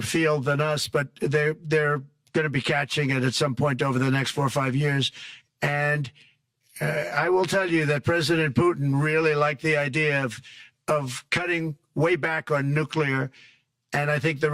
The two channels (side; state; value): both; identical; correlation 1.00